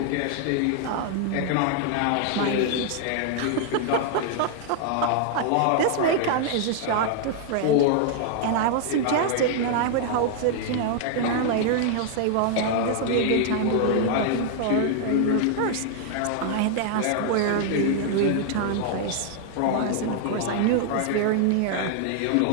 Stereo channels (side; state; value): both; different; correlation 0.00